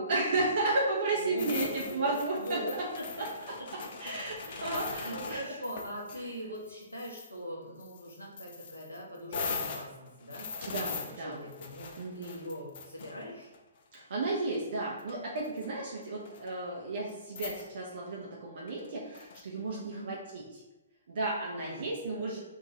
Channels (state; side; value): inverted; both; correlation -0.53